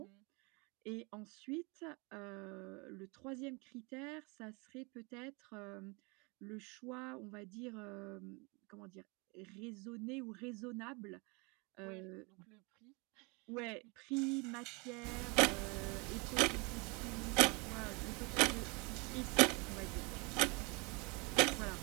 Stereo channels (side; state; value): left; quieter; 29.5 dB